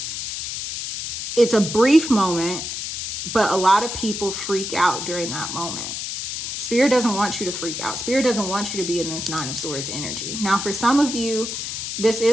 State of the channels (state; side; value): noise; left; hiss, 5 dB below the sound